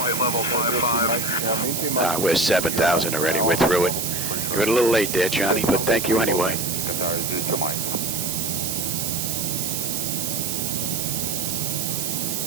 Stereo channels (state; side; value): noise; right; hiss, 2 dB below the sound